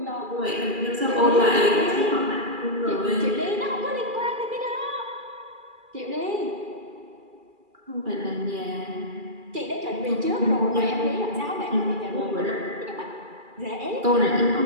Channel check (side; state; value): left; late; 2.4 ms